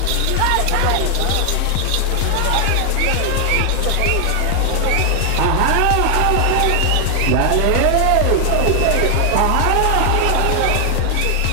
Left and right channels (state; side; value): different; both; correlation 0.00